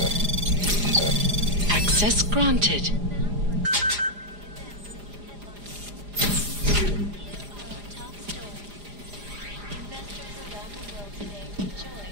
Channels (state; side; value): late; left; 4.9 ms